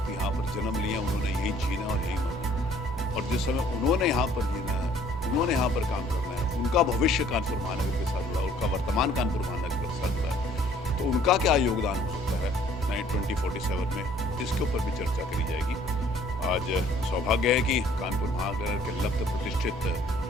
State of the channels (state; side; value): normal; both; correlation 0.58